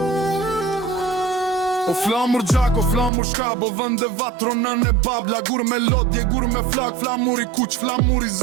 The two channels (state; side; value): drops out; left; at 3.1 s